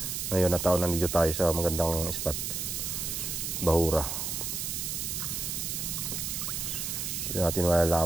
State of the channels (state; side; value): noise; right; hiss, 3 dB below the sound